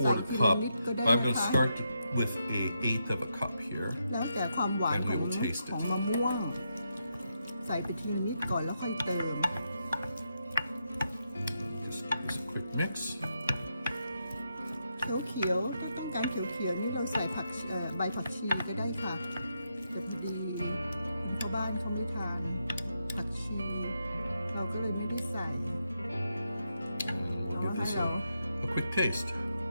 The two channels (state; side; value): inverted; both; correlation -0.83